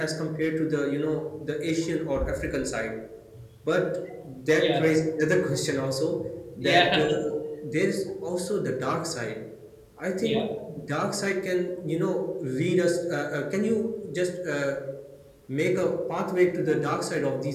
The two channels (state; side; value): identical; both; correlation 1.00